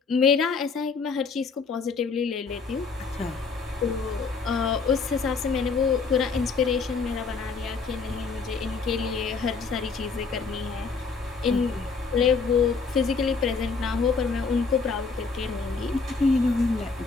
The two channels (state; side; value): quieter; right; 4.8 dB